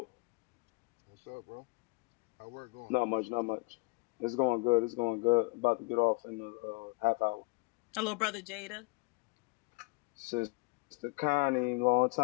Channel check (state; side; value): quieter; right; 27.7 dB